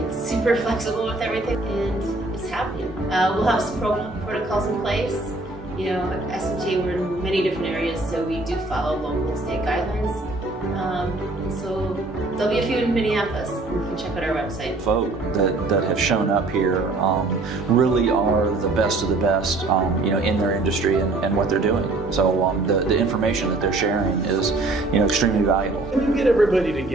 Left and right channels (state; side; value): quieter; left; 3.1 dB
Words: super flexible with everything, and it's happening. We'll have some protocols in place. You know, at SMTA, we're in many different areas, so we do follow local and state guidelines. And so there'll be a few in Minneapolis. You can check out our website. Folk that have shown up here really are the best of the best, you know, in their industry and what they're doing. So the information that they're sharing is, you know, extremely valuable. When you get everybody